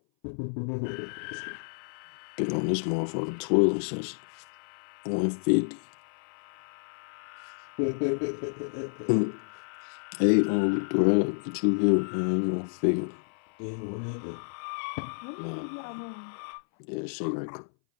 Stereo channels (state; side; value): silent; right; 58 dB below the other